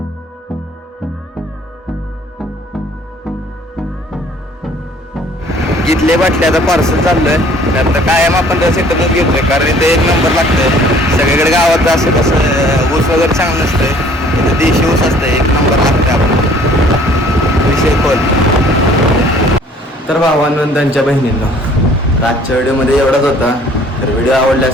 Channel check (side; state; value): both; normal; correlation 0.55